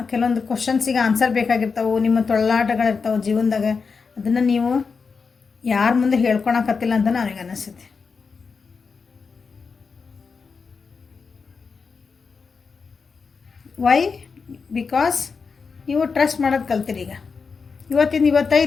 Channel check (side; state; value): right; quieter; 5.1 dB